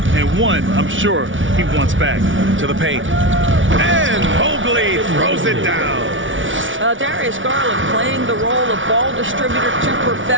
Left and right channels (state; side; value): late; left; 0.56 ms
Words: And one, I'm sure, he wants back. To the paint. And Mobley throws it down. Darius Garland playing the role of ball distributor to